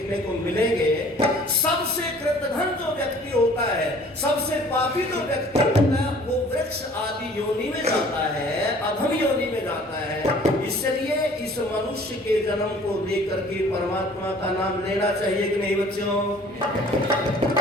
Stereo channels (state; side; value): normal; both; correlation 0.52